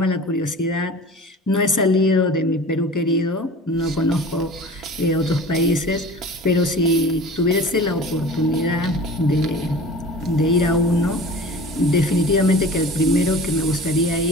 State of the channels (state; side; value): normal; both; correlation 0.40